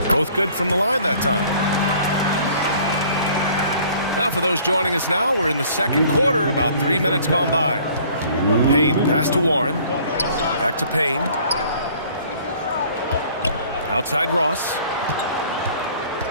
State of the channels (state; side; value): inverted; both; correlation -0.54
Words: Both good from the line that time. Now for those joining us now, we're in the second quarter, about 3 minutes gone by. Payne, pass to Warren. Back to Payne. Outside Ross.